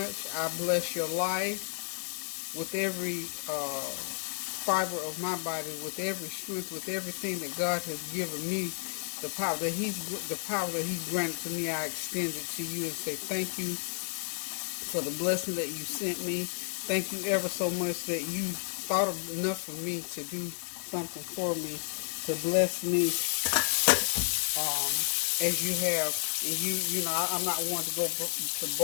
I bless your life with every fiber of my body, with every strength, with everything that God has given me. The power that He's granted to me, I extend it to you and say thank you for the blessing that you sent me. Thank you ever so much that you thought enough of me to do something for me, to bless me as you have. And I'm not one to go to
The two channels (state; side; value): silent; right; 57 dB below the other